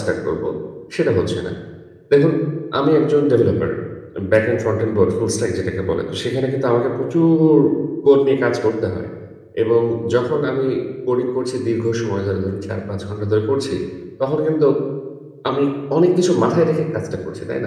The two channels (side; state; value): both; identical; correlation 1.00